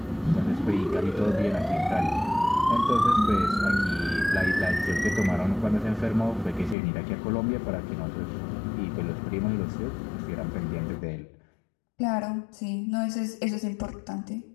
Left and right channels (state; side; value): drops out; right; at 6.8 s